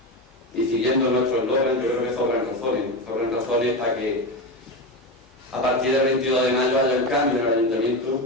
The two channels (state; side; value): normal; both; correlation 0.19